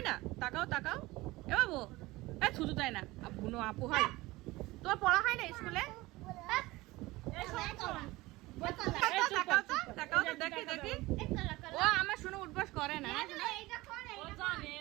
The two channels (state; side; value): quieter; left; 20.0 dB